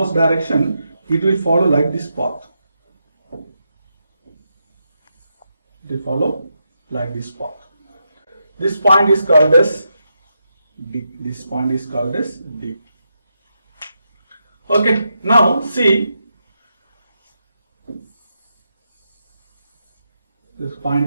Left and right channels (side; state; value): both; inverted; correlation -0.84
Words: direction, it will follow like this path. It will follow like this path. This point is called as D. This point is called as D. Okay, now see, this point